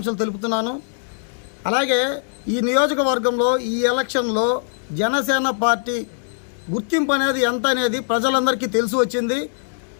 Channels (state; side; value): silent; right; digital silence